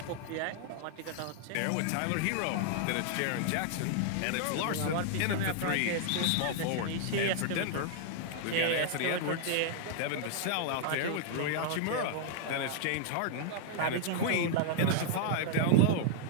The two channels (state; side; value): different; both; correlation -0.01